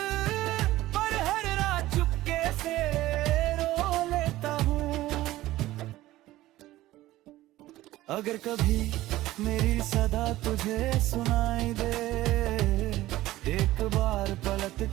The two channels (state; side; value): quieter; left; 16.3 dB